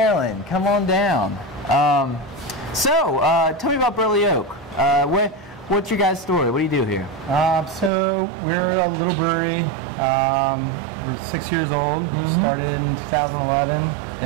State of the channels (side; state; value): left; drops out; at 7.9 s